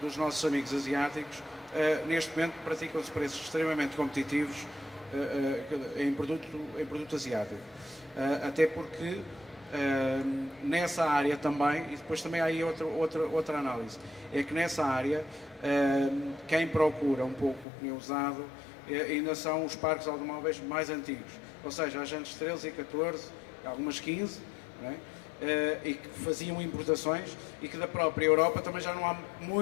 dos nossos amigos asiáticos, neste momento praticam-se preços extremamente competitivos em produto asiático, até porque nessa área também, e depois também há aí outra análise, é que nessa área quem procura um pouco o pneu usado ainda são os parques automóveis mais antigos, ou seja, as jantes 13 e 14, algumas 15, não é? E que faziam importações e que da própria Europa também já não há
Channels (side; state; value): right; drops out; at 17.7 s